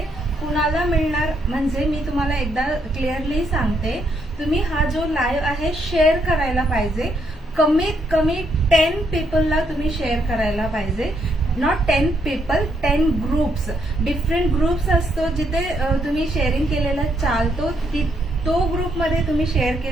कुणाला मिळणार म्हणजे मी तुम्हाला एकदा क्लिअरली सांगते, तुम्ही हा जो लाईव्ह आहे शेअर करायला पाहिजे. कमीत कमी 10 पीपलला तुम्ही शेअर करायला पाहिजे. Not 10 people, 10 groups. Different groups असतो जिथे तुम्ही शेअरिंग केलेला चालतो, तो ग्रुपमध्ये तुम्ही शेअर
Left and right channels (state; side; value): normal; both; correlation 0.75